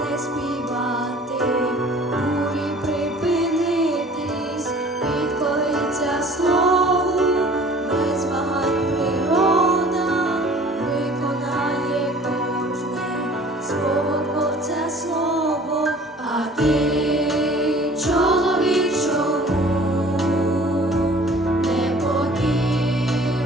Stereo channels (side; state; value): both; normal; correlation 0.49